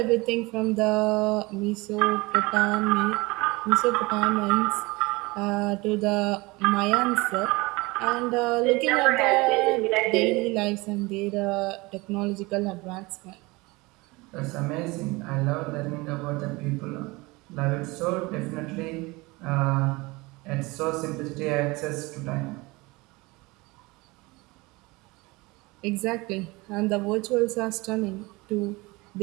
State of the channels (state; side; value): quieter; left; 23.5 dB